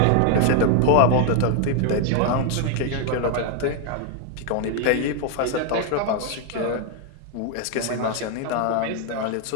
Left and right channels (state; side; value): different; both; correlation 0.00